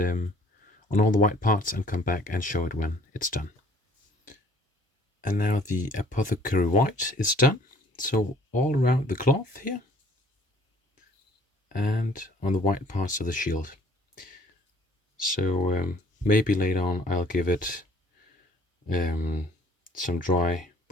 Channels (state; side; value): normal; both; correlation 0.57